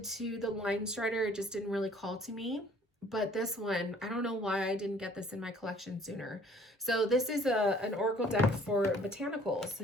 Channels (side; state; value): both; normal; correlation 0.56